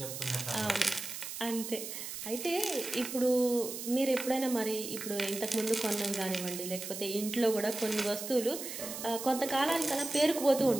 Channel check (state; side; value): noise; right; hiss, 8 dB below the sound